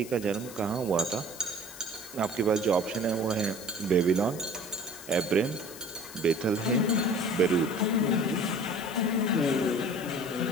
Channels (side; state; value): left; noise; hiss, 15 dB below the sound